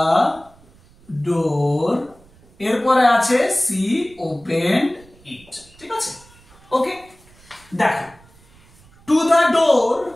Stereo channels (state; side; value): noise; right; rumble, 27 dB below the sound